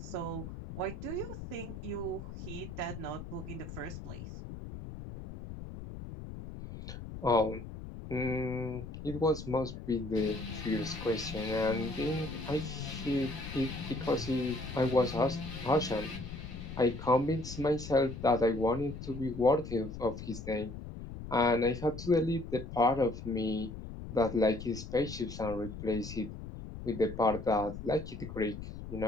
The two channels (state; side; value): noise; left; rumble, 10 dB below the sound